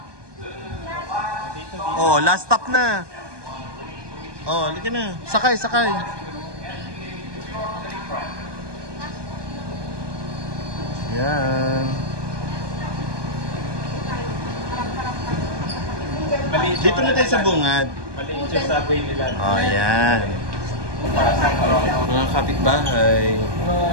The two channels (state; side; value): late; left; 1.2 ms